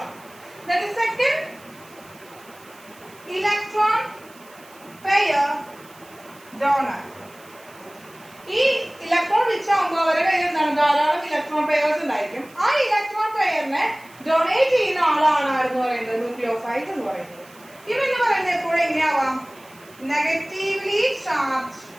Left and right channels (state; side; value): noise; right; hiss, 25 dB below the sound